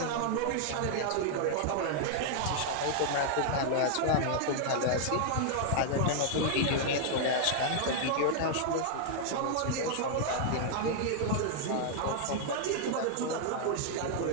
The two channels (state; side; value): different; both; correlation -0.01